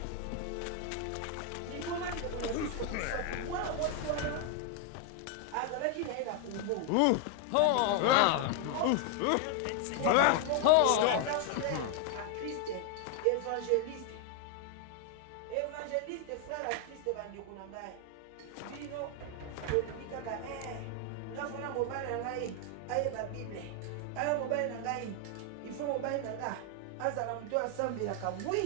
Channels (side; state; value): both; different; correlation 0.00